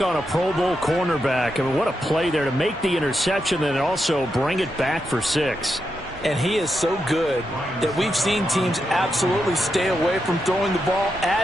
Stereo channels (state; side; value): normal; both; correlation 0.85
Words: on a Pro Bowl cornerback. I mean, what a play there to make the interception and also bring it back for 6. And he is so good that we've seen teams absolutely stay away from throwing the ball